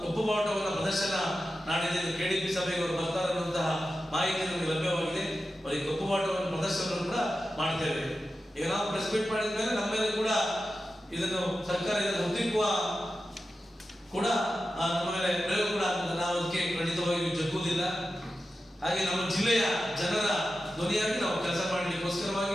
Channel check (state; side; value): normal; both; correlation 0.92